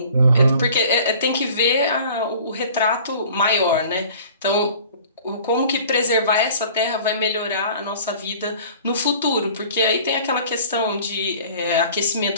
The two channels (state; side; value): inverted; both; correlation -0.47